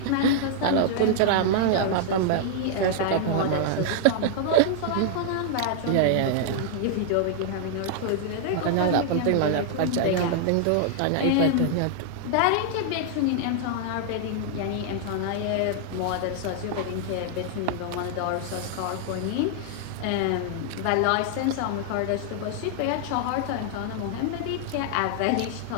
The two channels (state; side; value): different; both; correlation -0.01